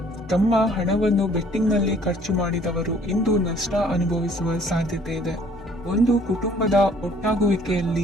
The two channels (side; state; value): left; noise; hum, 21 dB below the sound